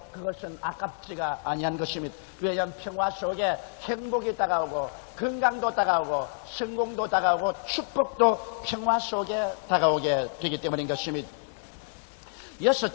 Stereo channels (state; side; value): silent; right; 57 dB below the other